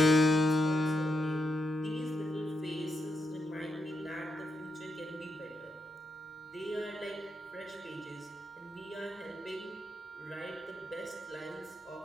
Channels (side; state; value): both; normal; correlation 0.84